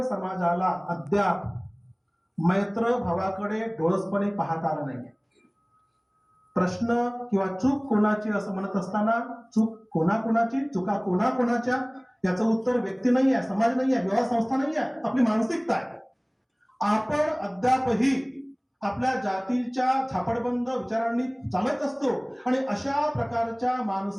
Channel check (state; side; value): identical; both; correlation 1.00